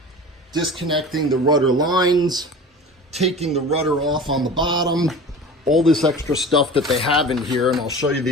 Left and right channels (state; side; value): normal; both; correlation 0.37